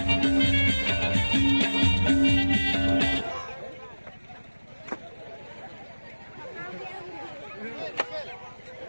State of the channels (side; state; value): both; inverted; correlation -1.00